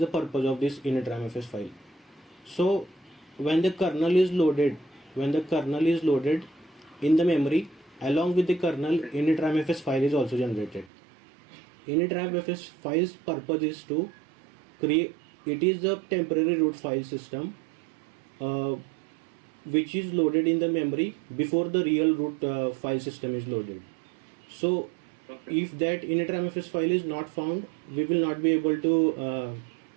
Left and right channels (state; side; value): drops out; left; at 10.9 s